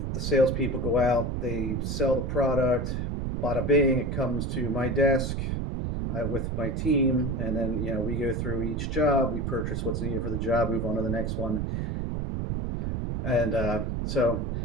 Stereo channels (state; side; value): noise; right; rumble, 1 dB below the sound